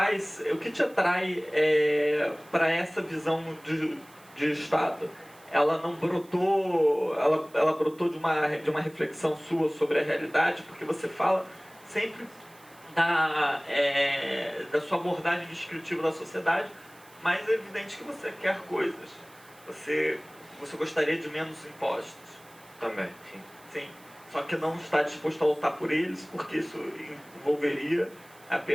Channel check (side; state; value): right; noise; hiss, 25 dB below the sound